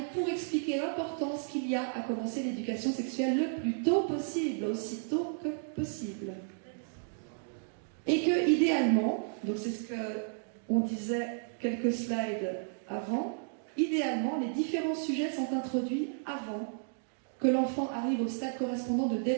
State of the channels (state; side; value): silent; left; digital silence